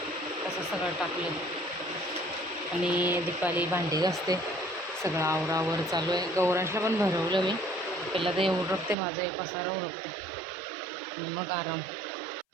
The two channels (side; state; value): left; drops out; at 9.0 s